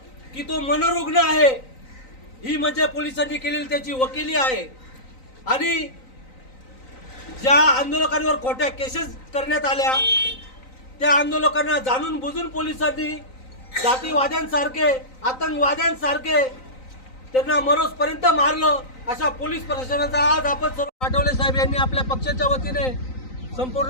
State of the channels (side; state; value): right; late; 3.9 ms